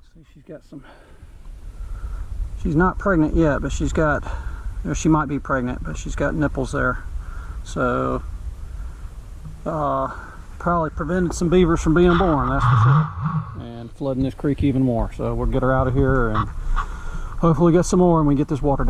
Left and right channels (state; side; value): identical; both; correlation 1.00